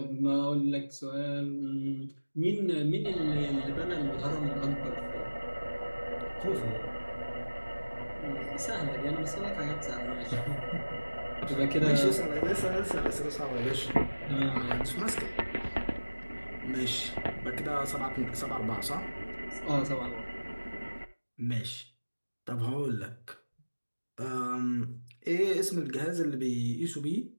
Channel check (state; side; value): inverted; both; correlation -1.00